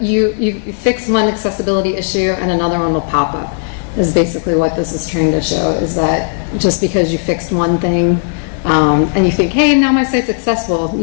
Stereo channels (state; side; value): silent; right; digital silence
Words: you fix one accessibility issue and another one will pop up. Is basically what this is trying to show, is that just because you fixed one thing and you think, hey, now my site's accessible,